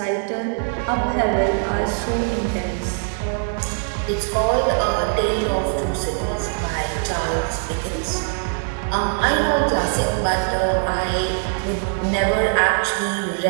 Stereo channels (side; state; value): left; silent; 64 dB below the other